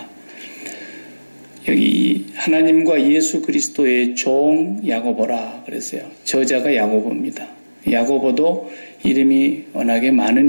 여기 하나님과 예수 그리스도의 종 야고보라 그랬어요. 저자가 야고보입니다. 야고보도 이름이 워낙에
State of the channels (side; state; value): both; inverted; correlation -1.00